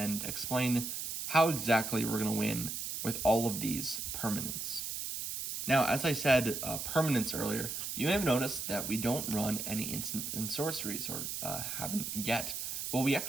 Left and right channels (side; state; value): right; noise; hiss, 4 dB below the sound